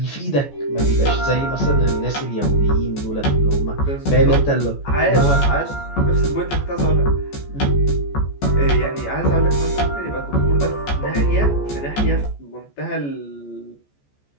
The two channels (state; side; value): late; right; 14 ms